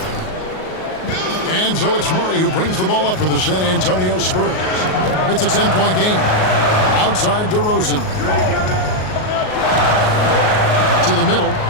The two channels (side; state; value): right; late; 38 ms